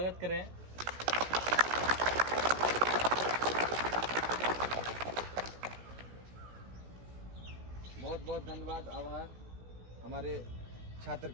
करें। बहुत बहुत धन्यवाद, आभार हमारे छात्र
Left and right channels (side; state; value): left; late; 16 ms